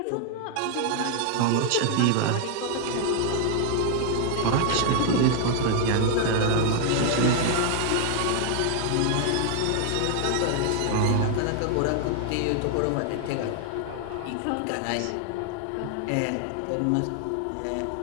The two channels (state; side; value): different; both; correlation 0.00